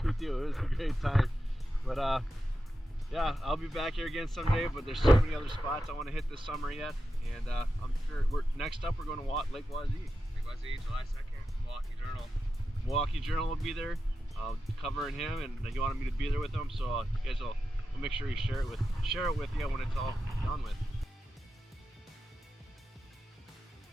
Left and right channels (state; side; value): normal; both; correlation 0.90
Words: Me too. It was a great time. But yeah, I'll be back here again someday. But there's so many other spots I want to hit this summer yet. And I'm sure next up we're going to Lake Wazee. Lake Wazee, July 2nd, Milwaukee Journal. Milwaukee Journal will be there, covering him, and he wanted me to be there with him. So you guys will make sure you share it with you when it's all done with.